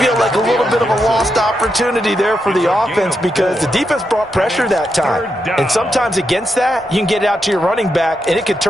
like a little bit of a lost opportunity there for the offense because the defense brought pressure that time. And sometimes against that, you can get out to your running back, and it could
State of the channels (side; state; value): both; normal; correlation 0.84